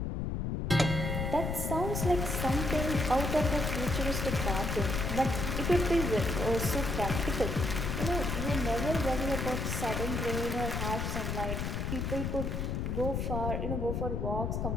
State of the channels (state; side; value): noise; left; rumble, 1 dB below the sound